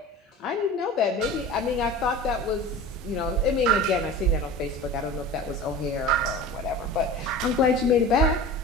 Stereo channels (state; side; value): normal; both; correlation 0.35